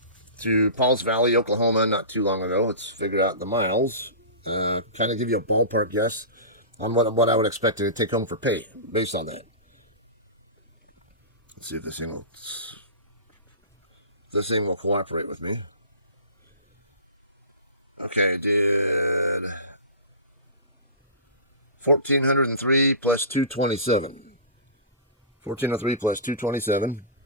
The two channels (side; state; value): both; inverted; correlation -0.31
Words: to Pauls Valley, Oklahoma, not too long ago. Let's figure out the miles. Kind of give you a ballpark guess on what I would expect to take home for pay based on that. Let's see if this thing will cooperate with me. Okay, did 1,403 plus 227. 1,403 plus 227